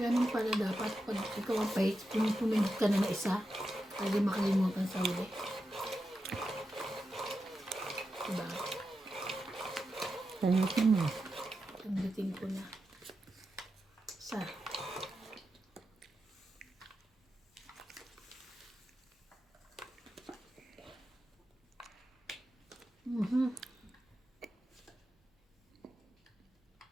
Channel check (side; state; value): both; normal; correlation 0.89